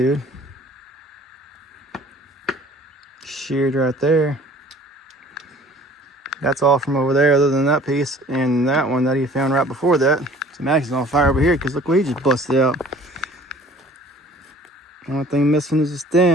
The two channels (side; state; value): both; normal; correlation 0.50